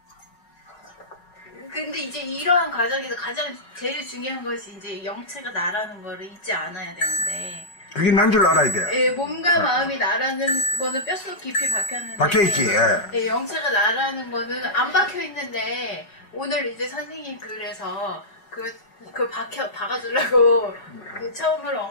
근데 이제 이러한 과정에서 가장 제일 중요한 것이 이제 영체가 나라는 거를 잊지 않아야 되는데 그게 난 줄 알아야 돼. 몸과 마음이 나라는 거는 뼛속 깊이 박혔는데 박혀있지. 영체가 나라는 거는 안 박혀있는데 오늘 이제 선생님 글에서 그걸 박아주려고 처음을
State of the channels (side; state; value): right; late; 5.2 ms